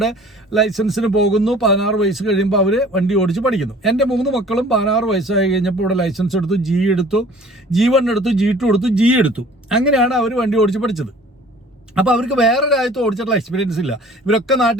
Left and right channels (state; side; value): normal; both; correlation 0.49